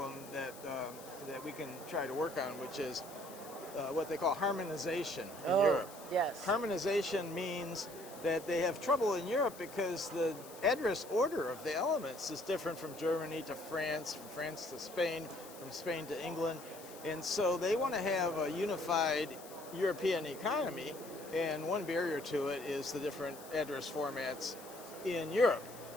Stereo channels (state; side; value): noise; left; hiss, 17 dB below the sound